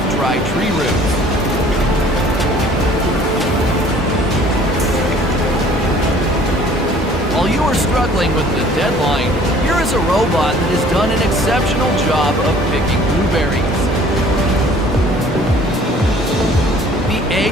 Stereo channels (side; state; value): both; normal; correlation 0.53